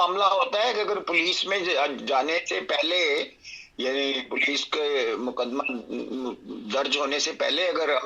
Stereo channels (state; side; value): identical; both; correlation 1.00